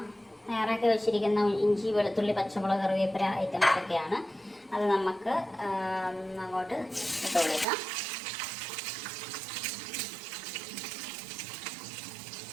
തയ്യാറാക്കി വെച്ചിരിക്കുന്ന ഇഞ്ചി, വെളുത്തുള്ളി, പച്ചമുളക്, കറിവേപ്പില ഐറ്റംസൊക്കെയാണ്. അത് നമുക്ക് അങ്ങോട്ട് ഇട്ട് കൊടുക്കാം.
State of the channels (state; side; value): drops out; left; at 7.7 s